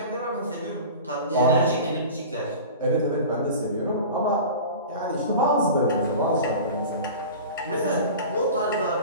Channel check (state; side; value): inverted; both; correlation -0.35